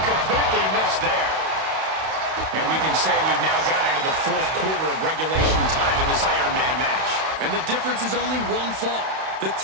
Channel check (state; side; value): late; left; 31 ms